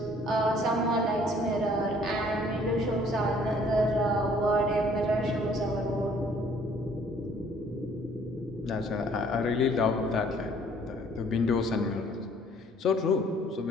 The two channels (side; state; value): both; normal; correlation 0.59